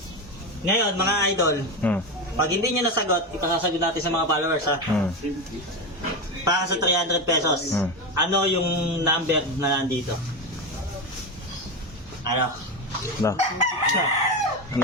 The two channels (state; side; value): normal; both; correlation 0.16